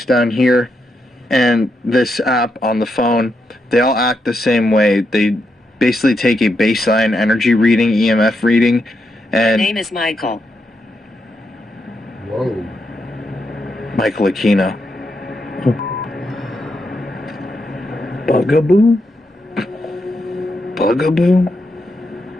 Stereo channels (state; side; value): normal; both; correlation 0.82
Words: down here, and this app on the phone, they all act the same way. They basically take a baseline energy reading, EMF reading, and... My name is Michael. Whoa. Michael Aquino. Bugaboo? Bugaboo?